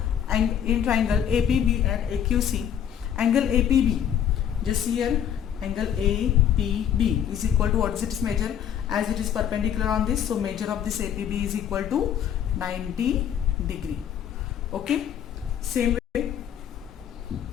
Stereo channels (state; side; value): quieter; right; 9.3 dB